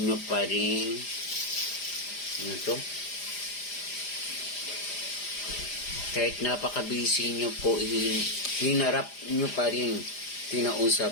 pa rin. Ano to? Kahit napakabisi nyo po, hinarap nyo pa rin. Kinausap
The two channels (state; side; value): late; right; 4.9 ms